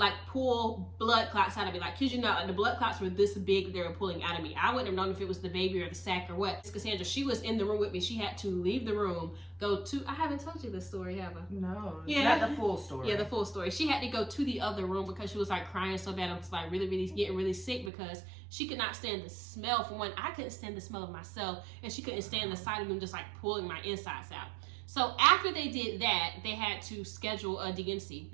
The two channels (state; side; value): drops out; left; at 17.9 s